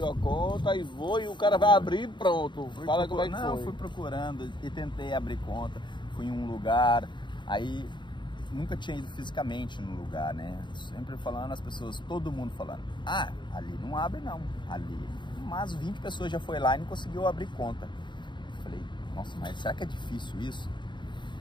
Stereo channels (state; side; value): late; right; 0.22 ms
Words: a conta e o cara vai abrir e pronto. Fala como é que foi. Não, fui procurando e tentei abrir conta. Fui em um lugar, aí nunca tinha ido fisicamente no lugar, né? Sempre falando, as pessoas, todo mundo falando, ali não abre não, ali. Mas 20 pessoas já foi lá e não conseguiu abrir conta. Eu falei, nossa, mas será que é difícil isso?